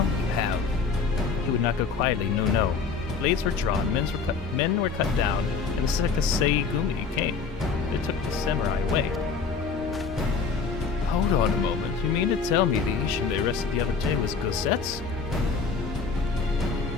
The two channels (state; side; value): quieter; right; 5.1 dB